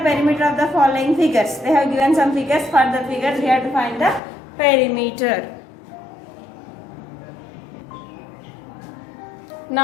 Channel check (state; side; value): drops out; right; at 4.2 s